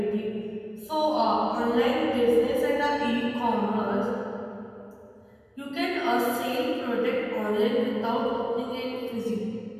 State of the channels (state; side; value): identical; both; correlation 1.00